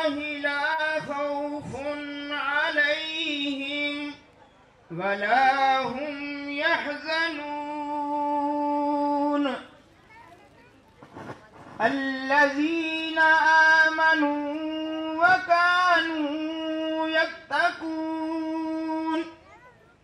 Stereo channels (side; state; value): both; identical; correlation 1.00